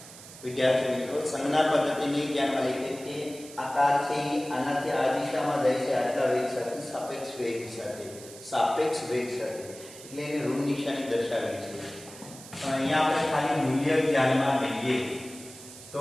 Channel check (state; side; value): noise; right; hiss, 17 dB below the sound